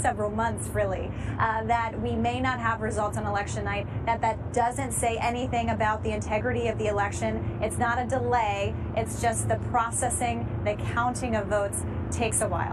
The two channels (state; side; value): identical; both; correlation 1.00